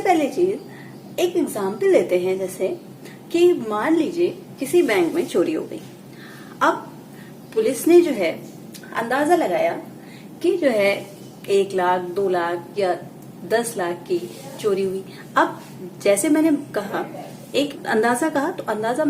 चीज एक एग्जाम्पल लेते हैं, जैसे कि मान लीजिए किसी बैंक में चोरी हो गई। अब पुलिस ने जो है अंदाजा लगाया कि जो है 1 लाख 2 लाख या 10 लाख की चोरी हुई। अब जैसे मैंने कहा एक अंदाजा कहा, तो अंदाजा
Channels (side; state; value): both; identical; correlation 1.00